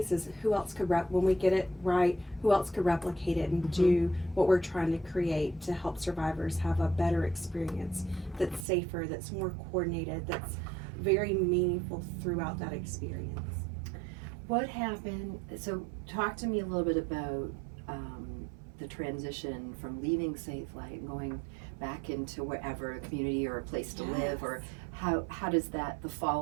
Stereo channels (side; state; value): left; drops out; at 8.7 s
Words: is who else could when we get it right, who else could replicate it and do what we're trying to create to help survivors have a better experience that's safer, that's more coordinated, that's very meaningful throughout that experience. What happened? So talk to me a little bit about the transition from leaving Safelight and going back into wherever, a community or a place to live, or how does the